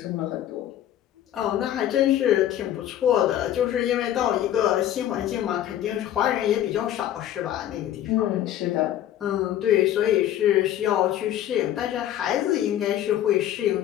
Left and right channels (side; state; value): right; quieter; 11.8 dB